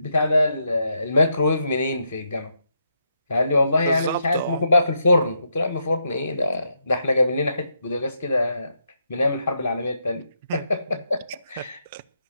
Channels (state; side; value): inverted; both; correlation -0.80